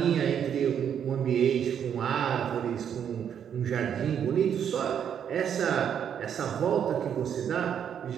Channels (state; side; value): quieter; left; 8.6 dB